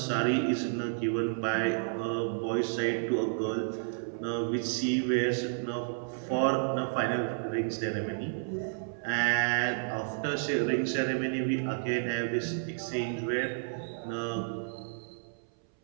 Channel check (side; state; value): left; silent; 57 dB below the other